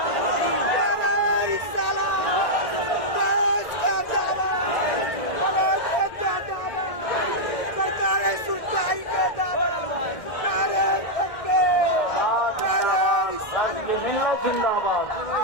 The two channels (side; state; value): right; late; 1.6 ms